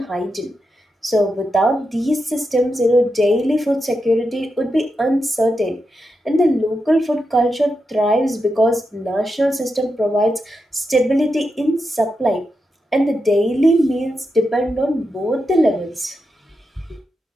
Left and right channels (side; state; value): both; normal; correlation 0.87